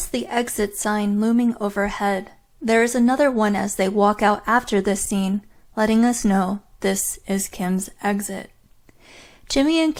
the exit sign looming overhead. There is another one as they walk out after this scene, letting us know this is Kim's exit. Jimmy and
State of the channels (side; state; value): both; identical; correlation 1.00